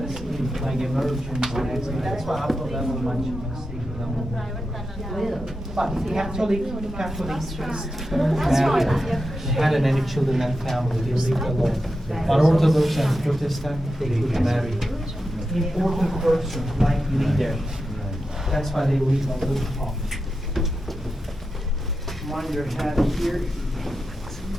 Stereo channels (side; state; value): both; normal; correlation 0.89